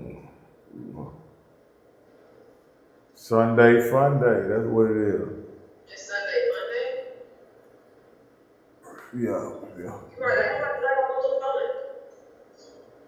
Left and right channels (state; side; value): identical; both; correlation 1.00